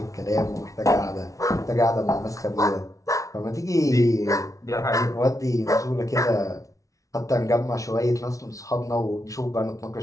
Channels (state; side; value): late; right; 0.16 ms